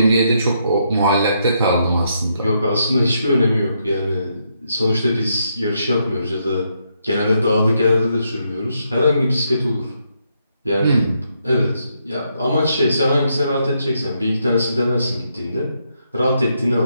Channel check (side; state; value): both; inverted; correlation -0.78